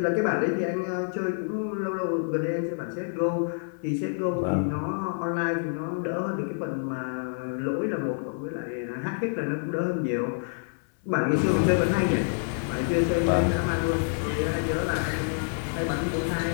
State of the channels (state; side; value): silent; right; 60 dB below the other